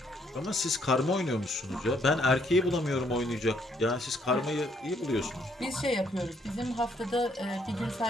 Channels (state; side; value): normal; both; correlation 0.69